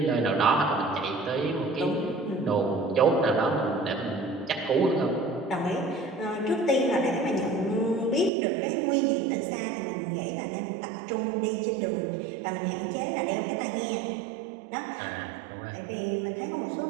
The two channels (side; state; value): left; drops out; at 8.3 s